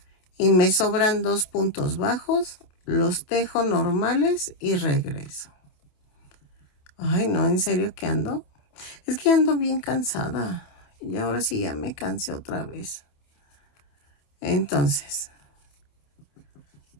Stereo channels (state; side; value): late; right; 27 ms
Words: y me sobran 2 puntos bajos. Los tejo normales y regreso. Ay, no, ¿en serio que ando? Es que ando bien cansada. Y ahora sí ya me cansé otra vez. Entonces,